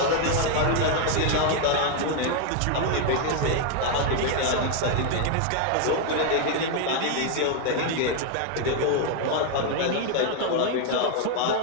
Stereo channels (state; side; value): different; both; correlation 0.01